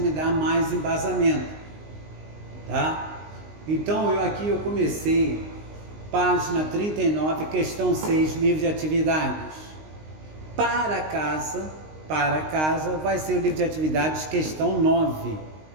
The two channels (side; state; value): left; late; 19 ms